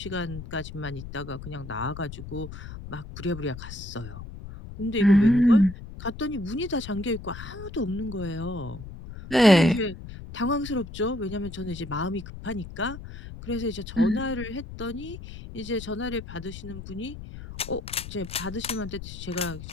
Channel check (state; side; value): noise; left; rumble, 11 dB below the sound